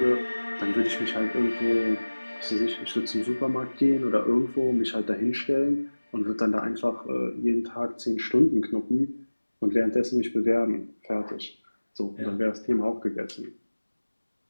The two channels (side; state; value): both; inverted; correlation -1.00